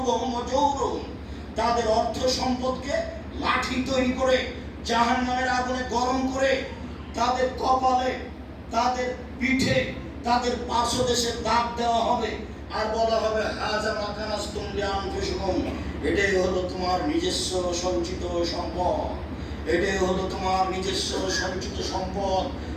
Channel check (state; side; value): identical; both; correlation 1.00